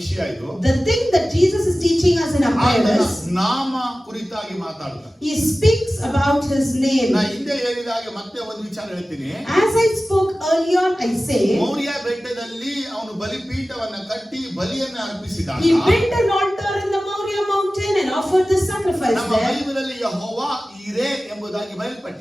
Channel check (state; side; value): normal; both; correlation 0.96